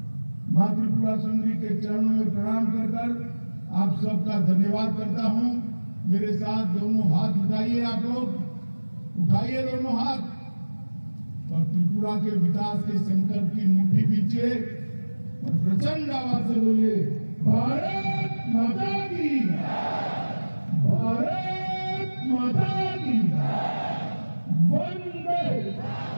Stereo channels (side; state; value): both; inverted; correlation -1.00